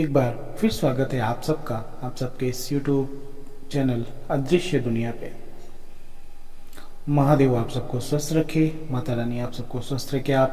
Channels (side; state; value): both; identical; correlation 1.00